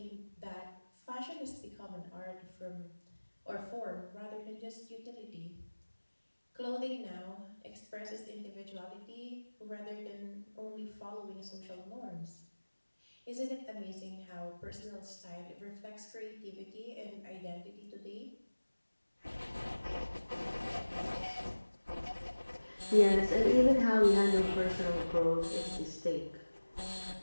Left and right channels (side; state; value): both; inverted; correlation -1.00